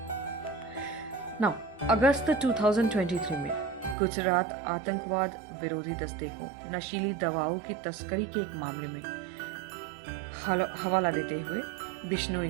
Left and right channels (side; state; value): left; drops out; at 4.0 s